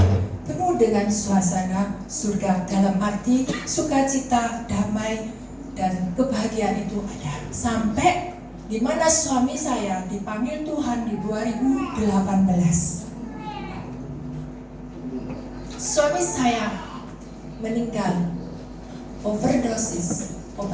penuh dengan suasana surga, dalam arti sukacita, damai, dan kebahagiaan itu ada. Sampai di mana suami saya dipanggil Tuhan di 2018. Suami saya meninggal overdosis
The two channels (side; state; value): both; identical; correlation 1.00